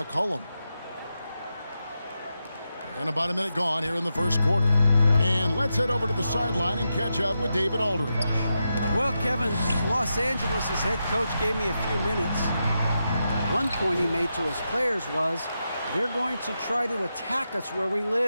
And about a minute gone here in the first quarter. And let's head over to the sideline and catch up with David Aldridge. Well, Kevin, Los Angeles' head coach gave me a few minutes. One point he made to his players was, they're going to try to attack us where we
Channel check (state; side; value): inverted; both; correlation -0.87